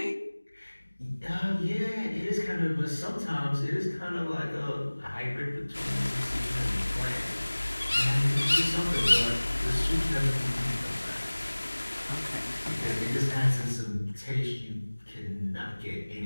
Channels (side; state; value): both; inverted; correlation -1.00